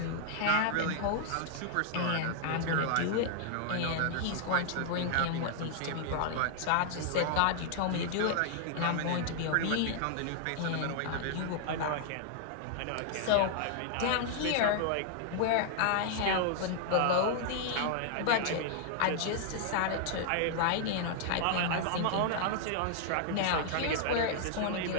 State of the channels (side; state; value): both; different; correlation -0.01